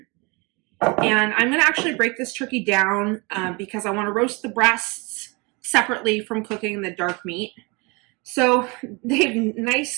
And I'm going to actually break this turkey down because I want to roast the breasts separately from cooking the dark meat. So they've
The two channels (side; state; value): left; quieter; 28.5 dB